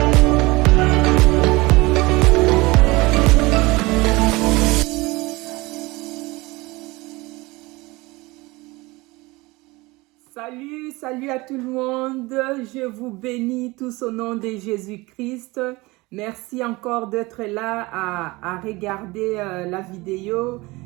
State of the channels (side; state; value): left; quieter; 22.6 dB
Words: Salut à tout le monde. Je vous bénis tous au nom de Jésus-Christ. Merci encore d'être là à regarder la vidéo.